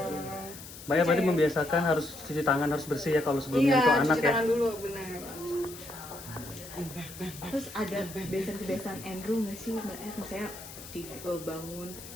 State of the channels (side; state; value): left; noise; hiss, 14 dB below the sound